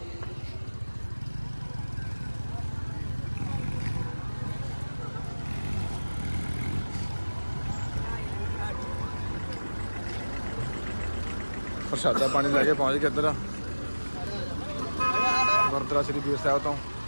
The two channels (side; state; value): both; inverted; correlation -1.00